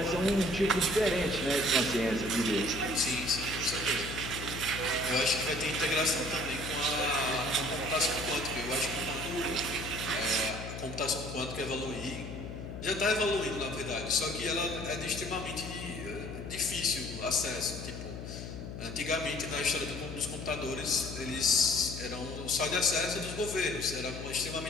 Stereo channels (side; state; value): left; noise; hum, 8 dB below the sound